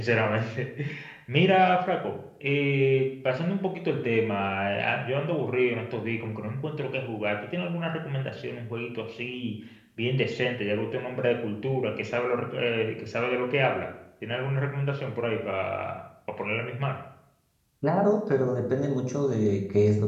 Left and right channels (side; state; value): both; identical; correlation 1.00